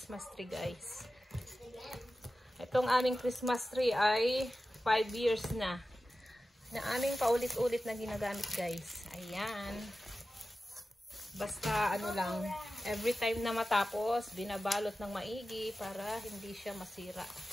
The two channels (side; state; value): both; normal; correlation 0.94